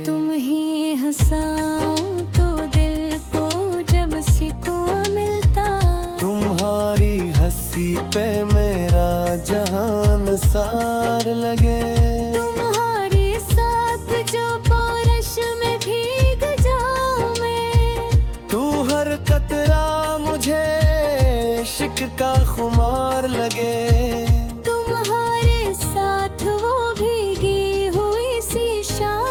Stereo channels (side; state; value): both; identical; correlation 1.00